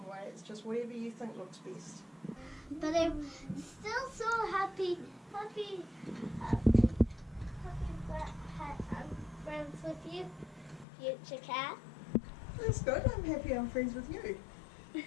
way, it's just whatever you think looks best. But I'm still so happy that I'm friends with you, future cat. That's good, I'm happy I'm friends with you.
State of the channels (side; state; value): right; drops out; at 10.9 s